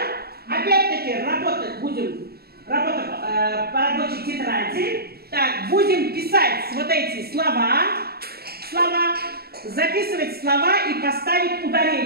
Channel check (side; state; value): left; late; 0.46 ms